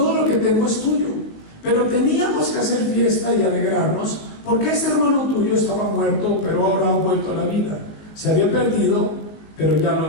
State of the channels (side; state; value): right; late; 19 ms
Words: lo que tengo es tuyo. Pero teníamos que hacer fiesta y alegrarnos, porque ese hermano tuyo estaba muerto, pero ahora ha vuelto a la vida. Se había perdido, pero ya lo